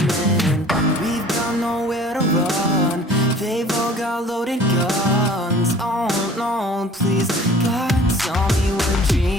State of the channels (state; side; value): normal; both; correlation 0.48